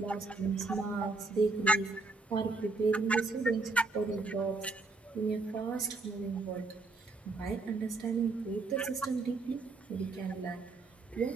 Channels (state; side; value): quieter; left; 3.6 dB